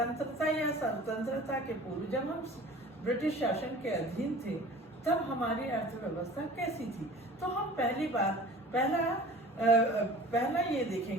या स्वतंत्रता के पूर्व जब हम ब्रिटिश शासन के अधीन थे तब हमारी अर्थव्यवस्था कैसी थी। तो हम पहला ये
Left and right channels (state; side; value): normal; both; correlation 0.43